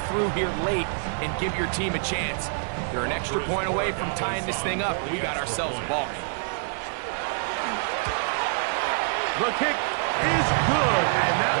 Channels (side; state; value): left; silent; digital silence